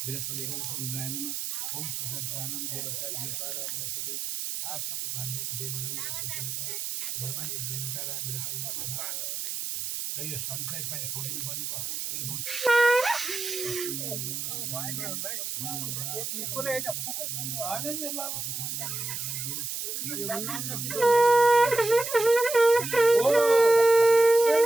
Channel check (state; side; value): noise; right; hiss, 4 dB below the sound